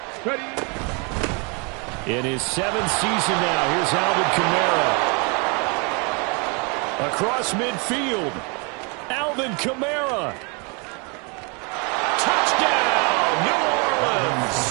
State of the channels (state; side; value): quieter; left; 33.0 dB